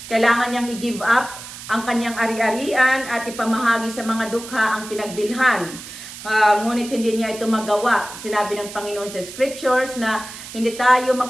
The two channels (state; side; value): noise; right; hiss, 13 dB below the sound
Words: Kailangan niyang i-give up ang kanyang ari-arian at ipamahagi sa mga dukha ang pinagbilhan. Ngunit hindi niya ito magawa. Sinabi ng Panginoon sa Scriptures na hindi tayo